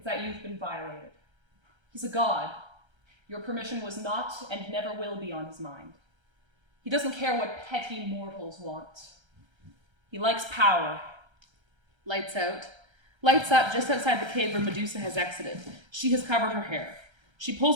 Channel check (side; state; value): left; late; 1.3 ms